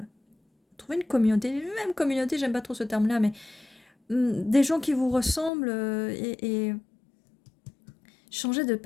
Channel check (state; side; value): drops out; right; at 5.5 s